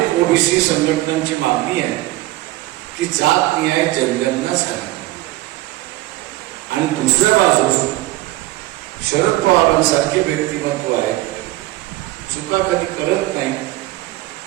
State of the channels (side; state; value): left; quieter; 17.7 dB